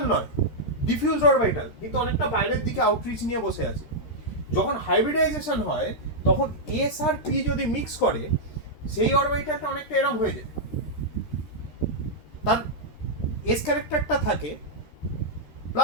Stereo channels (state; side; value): late; right; 13 ms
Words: নয়, ডিফিউজড অরবিটাল, কিন্তু অনেকটা বাইরের দিকে আউটরিচ নিয়ে বসে আছে। যখন হাইব্রিডাইজেশন হয় তখন এস আর পি যদি মিক্স করে, সেই অরবিটালটা অনেকটা এরম হয়ে যায়। তার এস ক্যারেক্টারটা থাকে,